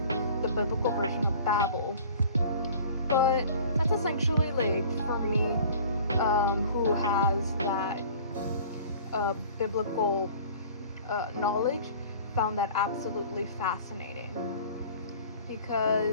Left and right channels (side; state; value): both; inverted; correlation -0.46